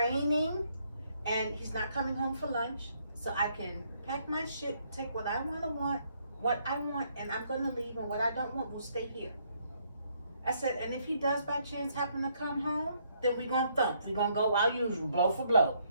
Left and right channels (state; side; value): inverted; both; correlation -0.71